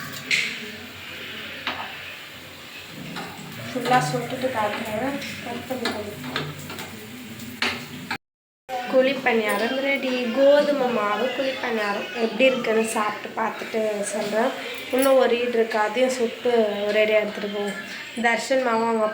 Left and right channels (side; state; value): both; identical; correlation 1.00